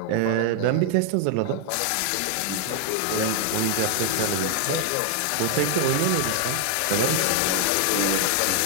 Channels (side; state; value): both; different; correlation 0.00